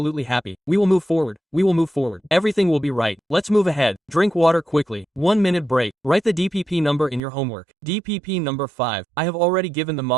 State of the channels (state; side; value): drops out; left; at 7.2 s